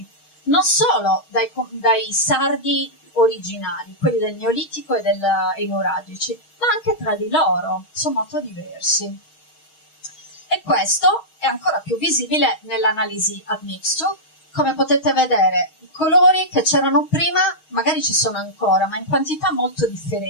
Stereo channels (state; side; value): late; right; 6.4 ms